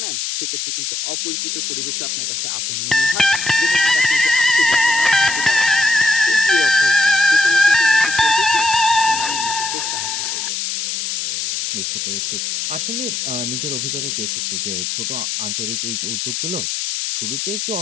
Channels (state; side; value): noise; left; hiss, 2 dB below the sound